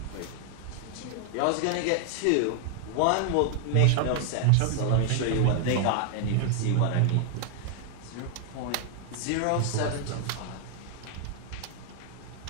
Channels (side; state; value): both; different; correlation 0.00